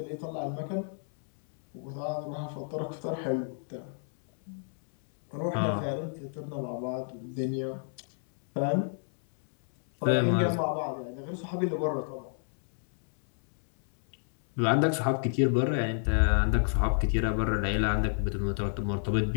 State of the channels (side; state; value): right; silent; 58 dB below the other